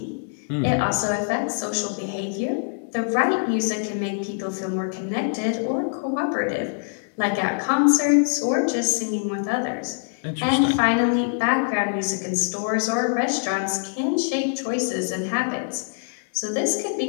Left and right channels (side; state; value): right; silent; 63 dB below the other